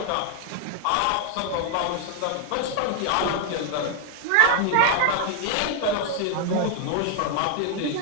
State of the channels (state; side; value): different; both; correlation 0.00